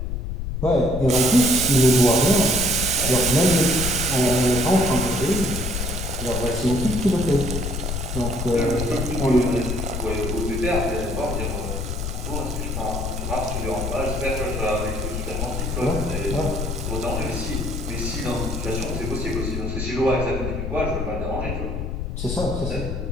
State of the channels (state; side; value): noise; left; rumble, 3 dB below the sound